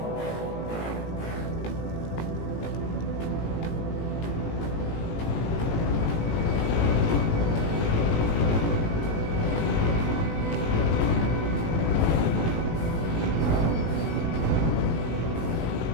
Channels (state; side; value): late; right; 18 ms